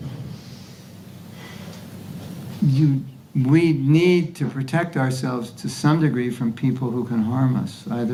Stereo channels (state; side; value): identical; both; correlation 1.00